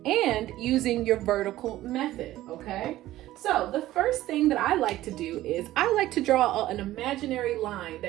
and using your vertical method, okay? So the first thing that I like to do is I like to draw an imaginary line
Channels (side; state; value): left; quieter; 15.2 dB